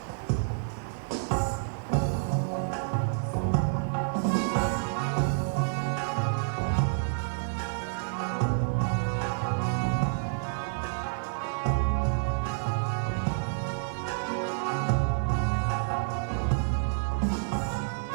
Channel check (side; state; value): left; silent; 59 dB below the other